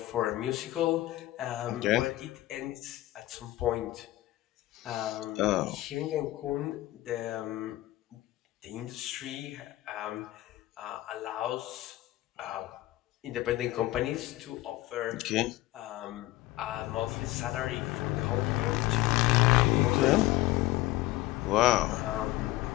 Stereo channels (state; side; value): quieter; right; 17.2 dB